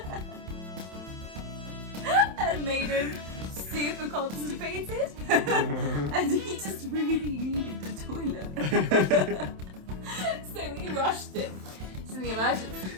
and made him super constipated. And he just really needed the toilet. So we rushed him to the emergency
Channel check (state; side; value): late; left; 27 ms